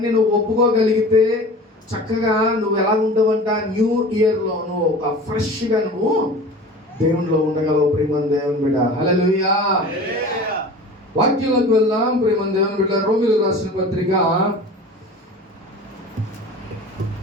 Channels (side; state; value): both; normal; correlation 0.38